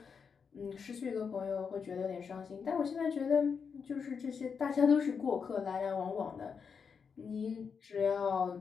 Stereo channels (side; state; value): right; quieter; 6.1 dB